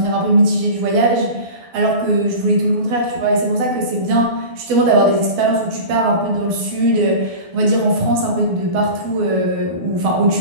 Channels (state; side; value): late; left; 12 ms